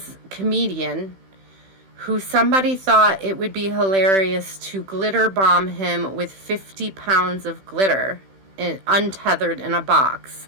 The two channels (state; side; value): late; left; 16 ms